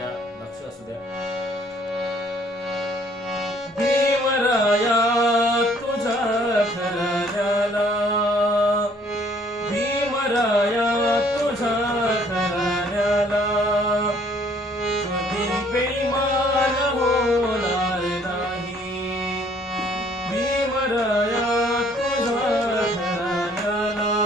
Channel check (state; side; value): normal; both; correlation 0.61